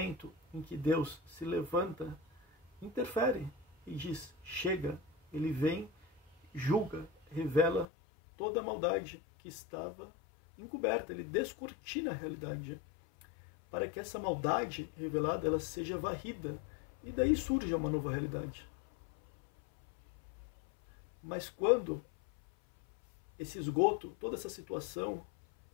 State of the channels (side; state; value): right; drops out; at 7.9 s